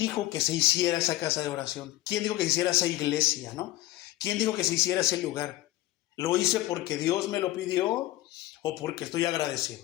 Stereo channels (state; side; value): quieter; right; 16.5 dB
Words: que se hiciera esa casa de oración? ¿Quién dijo que se hiciera esa iglesia, no? ¿Quién dijo que se hiciera ese lugar? ¿Lo hice porque Dios me lo pidió o porque estoy agradecido?